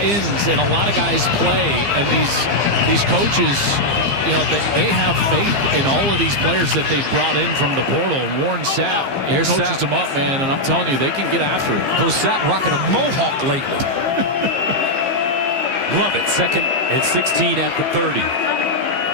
and a lot of guys play, and these coaches, you know, they have faith in all of these players that they've brought in from the portal. And Warren Sapp coaches them up, man, and I'm telling you, they can get after it. Coach Sapp rocking a mohawk lately. Love it. 2nd and 16 at the 30.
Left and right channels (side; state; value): left; late; 15 ms